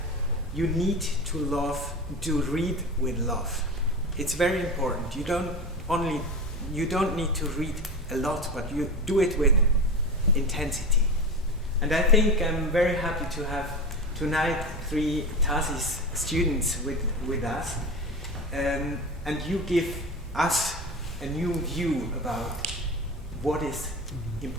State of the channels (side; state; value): both; normal; correlation 0.26